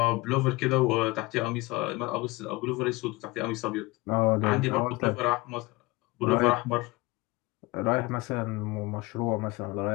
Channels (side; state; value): right; quieter; 22.5 dB